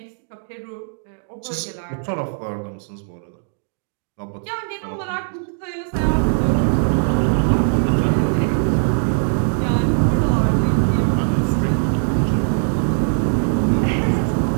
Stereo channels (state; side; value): silent; left; digital silence